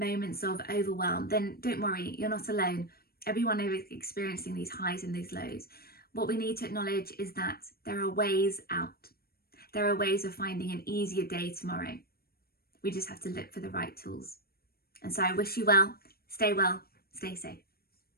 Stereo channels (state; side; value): late; right; 0.44 ms